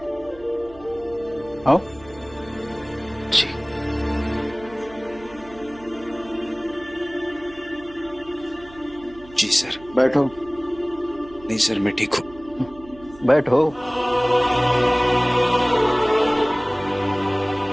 आओ। जी। जी सर। बैठो। नहीं सर, मैं ठीक हूँ। बैठो।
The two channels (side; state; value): right; noise; hum, 21 dB below the sound